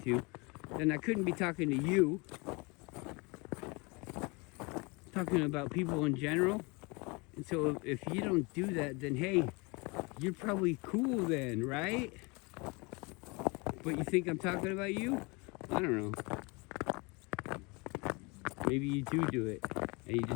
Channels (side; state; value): right; quieter; 28.2 dB